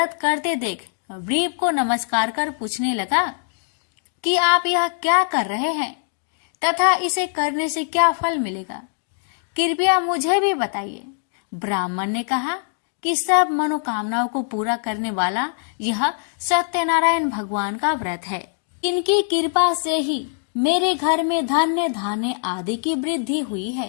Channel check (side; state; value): right; silent; digital silence